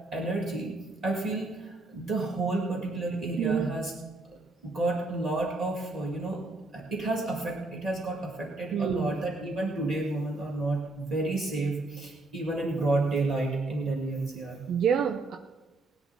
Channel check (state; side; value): quieter; left; 3.1 dB